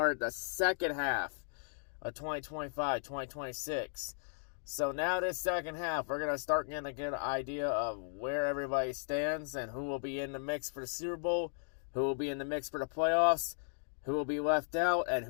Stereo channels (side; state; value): right; silent; digital silence